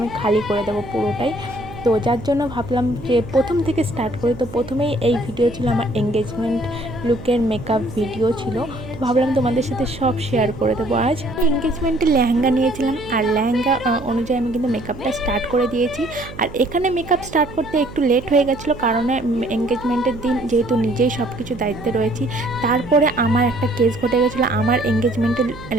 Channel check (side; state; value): right; noise; hum, 15 dB below the sound